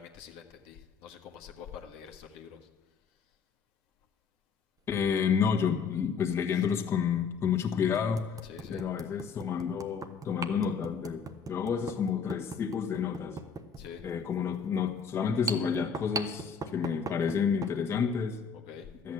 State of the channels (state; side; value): quieter; right; 6.1 dB